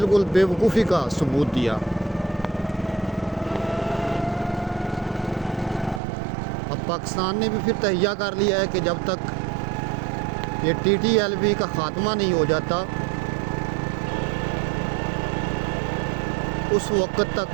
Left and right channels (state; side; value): drops out; left; at 6.0 s